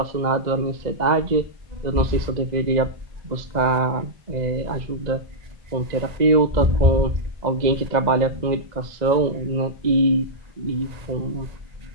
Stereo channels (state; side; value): late; left; 2.0 ms